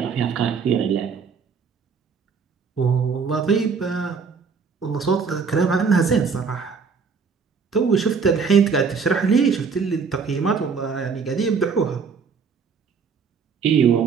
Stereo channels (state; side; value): quieter; left; 5.6 dB